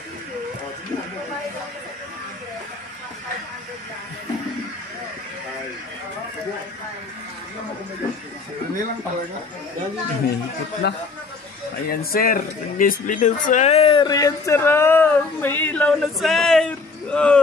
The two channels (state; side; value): quieter; right; 4.1 dB